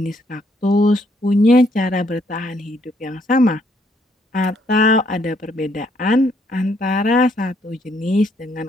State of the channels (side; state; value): both; normal; correlation 0.70